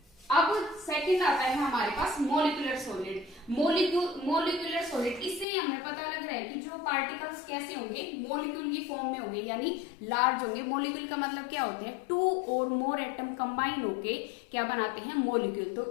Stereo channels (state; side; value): drops out; right; at 5.5 s